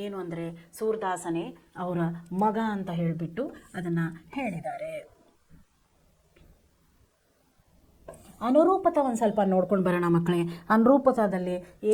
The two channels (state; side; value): identical; both; correlation 1.00